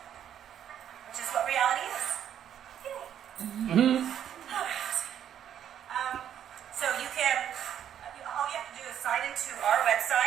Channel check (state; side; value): quieter; left; 9.8 dB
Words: which is what reality is. Yay. All right. So you can, all you have to do is sign into our